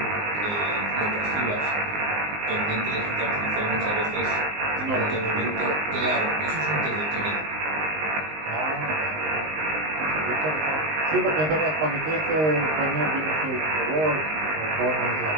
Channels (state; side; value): late; left; 19 ms